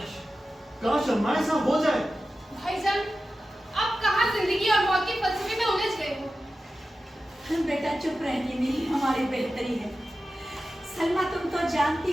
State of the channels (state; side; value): normal; both; correlation 0.93